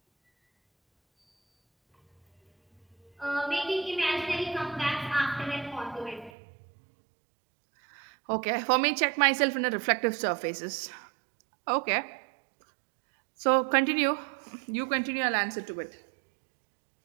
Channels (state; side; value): drops out; left; at 6.3 s